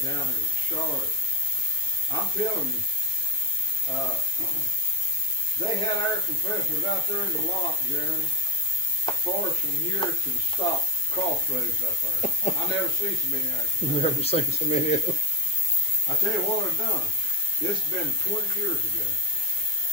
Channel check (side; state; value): both; normal; correlation 0.16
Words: down in Charlotte. I'm telling you, they had air compressors out there in the lot, Jeremy, far from here to the stop crossroads up there. I never seen so many air compressors. Never seen so many of them. I tell you what I've done. This has been 20 years